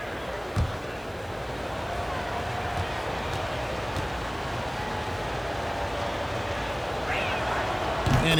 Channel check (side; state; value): right; noise; hiss, 26 dB below the sound